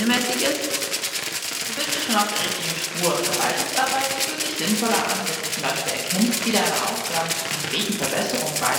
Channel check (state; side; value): identical; both; correlation 1.00